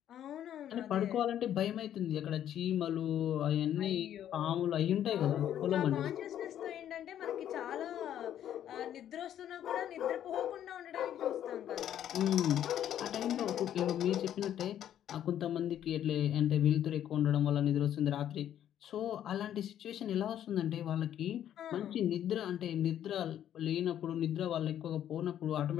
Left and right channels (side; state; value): right; quieter; 10.7 dB